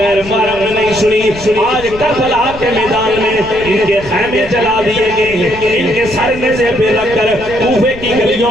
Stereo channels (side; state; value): left; noise; rumble, 15 dB below the sound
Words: محرم نے نہیں سنی، آج کربلا کے میدان میں ان کے خیمے جلا دیے گئے ہیں، ان کے سر میں سے پہ رکھ کر کوفے کی گلیوں